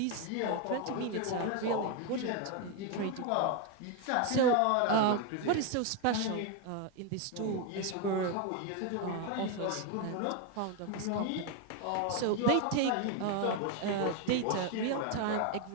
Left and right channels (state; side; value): different; both; correlation 0.01